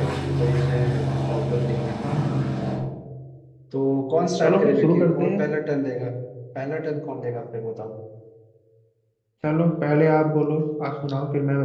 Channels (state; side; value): identical; both; correlation 1.00